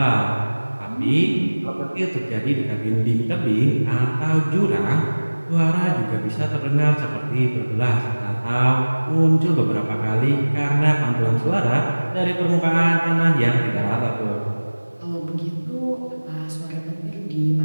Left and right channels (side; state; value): both; inverted; correlation -1.00